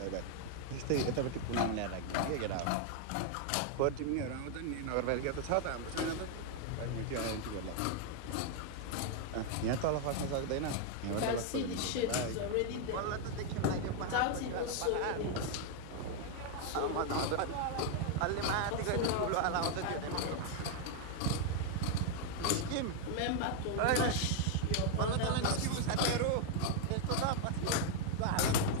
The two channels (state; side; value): different; both; correlation 0.00